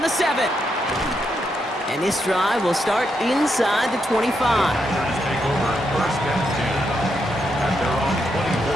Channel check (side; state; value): both; normal; correlation 0.81